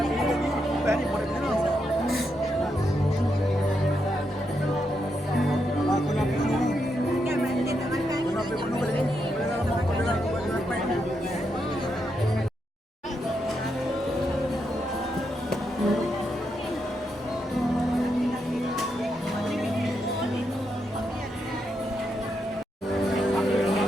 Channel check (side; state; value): both; normal; correlation 0.82